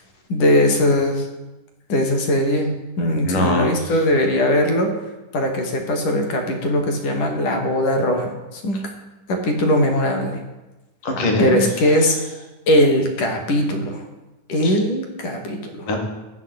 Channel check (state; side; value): late; right; 10 ms